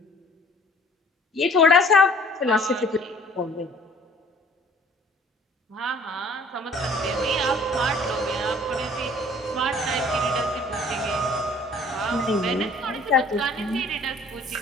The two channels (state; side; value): normal; both; correlation 0.54